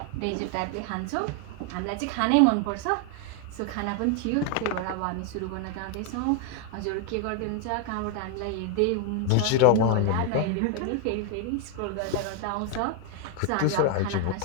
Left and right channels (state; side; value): different; both; correlation 0.00